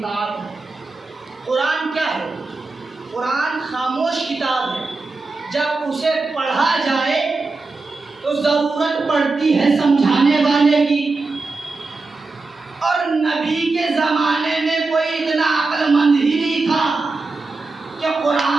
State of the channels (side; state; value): left; quieter; 3.7 dB